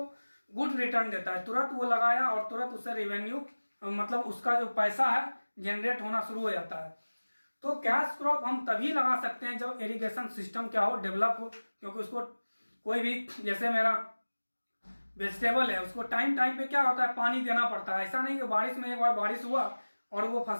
गुड रिटर्न देता है, तुरंत वो लगाया और तुरंत उससे रेवेन्यू मतलब उसका जो पैसा है जनरेट होना शुरू हो जाता है। तो कैश क्रॉप हम तभी लगा सकते हैं जब इरिगेशन सिस्टम क्या हो, डेवलप हो, क्योंकि उसको कोई भी, जैसे मेरा वेजिटेबल है, उसको टाइम पे क्या होता है, पानी देना पड़ता है। ऐसा नहीं कि बारिश में एक बार बारिश हुआ और वो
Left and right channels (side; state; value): both; inverted; correlation -1.00